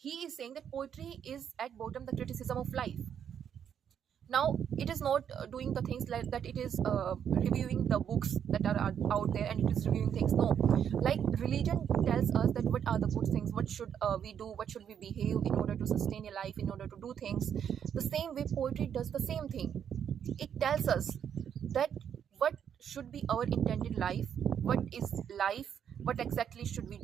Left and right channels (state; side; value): quieter; left; 8.5 dB